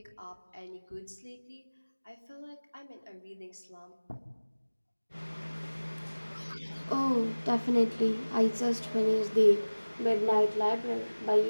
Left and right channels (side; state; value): both; inverted; correlation -1.00